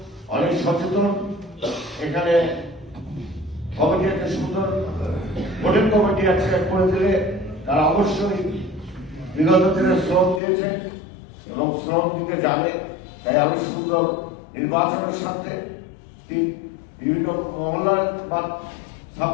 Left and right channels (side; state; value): right; drops out; at 10.4 s